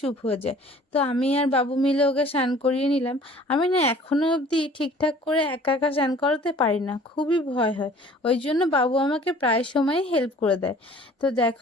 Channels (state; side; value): normal; both; correlation 0.51